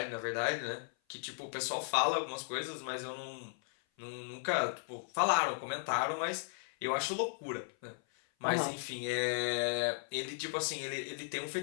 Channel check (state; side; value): silent; right; 54 dB below the other